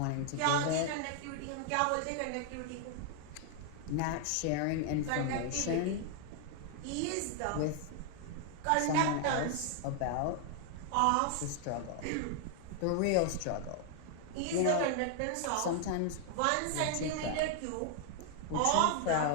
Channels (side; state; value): both; different; correlation 0.00